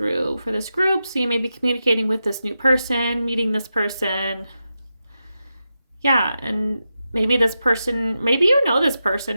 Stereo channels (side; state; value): both; inverted; correlation -0.89